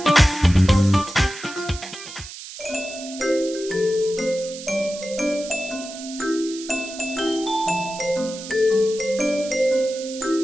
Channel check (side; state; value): right; noise; hiss, 13 dB below the sound